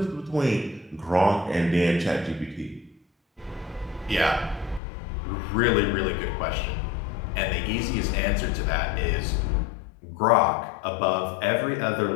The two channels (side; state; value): right; drops out; at 4.8 s